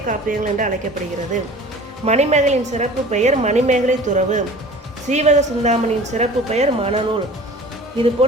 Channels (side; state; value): both; normal; correlation 0.44